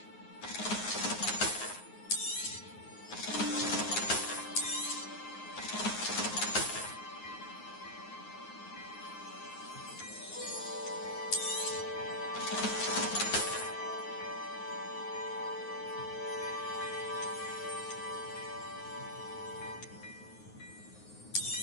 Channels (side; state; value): right; late; 9.5 ms